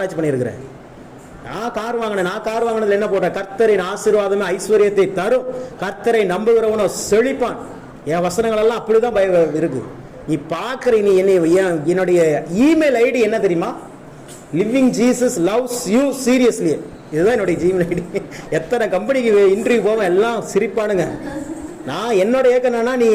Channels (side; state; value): both; identical; correlation 1.00